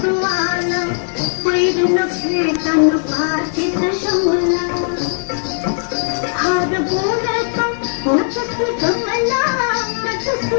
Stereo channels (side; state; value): right; silent; 62 dB below the other